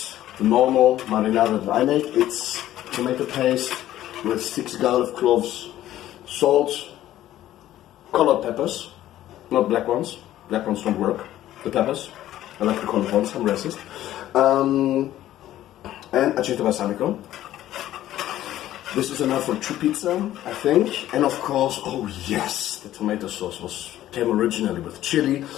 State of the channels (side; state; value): right; quieter; 13.4 dB